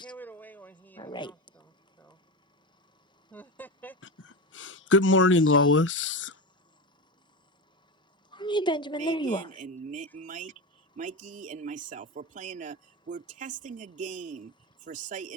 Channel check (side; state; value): both; normal; correlation 0.19